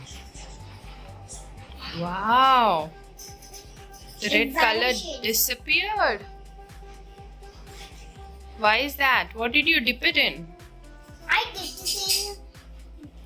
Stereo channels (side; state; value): both; identical; correlation 1.00